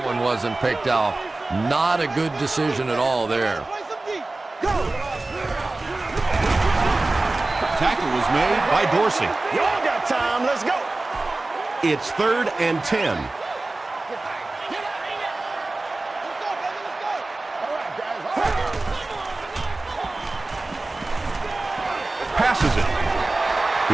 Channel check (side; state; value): left; quieter; 3.1 dB